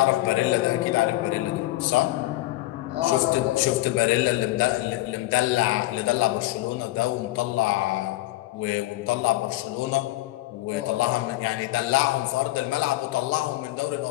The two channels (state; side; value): quieter; right; 17.8 dB